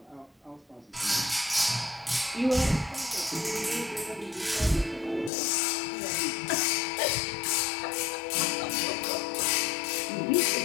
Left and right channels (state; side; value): drops out; right; at 5.3 s